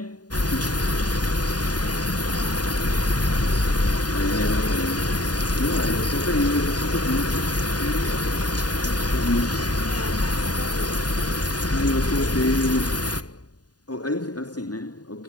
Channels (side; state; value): right; late; 0.69 ms